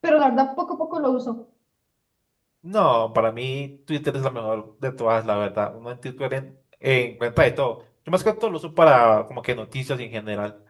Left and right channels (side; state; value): both; identical; correlation 1.00